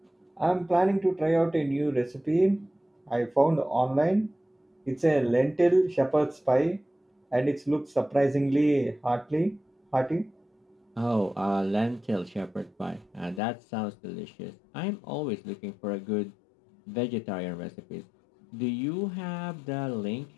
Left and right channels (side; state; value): right; drops out; at 13.4 s